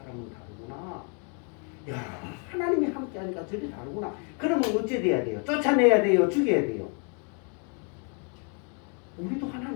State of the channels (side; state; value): right; quieter; 39.2 dB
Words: 다르구나. 야 하나님이 함께하니까 저게 다르구나. 그러면 어째 돼야 돼요? 쫓아내야 돼요? 죽여야 돼요? 우리도